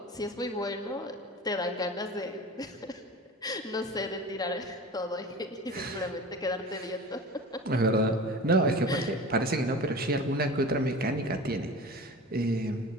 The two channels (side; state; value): both; normal; correlation 0.35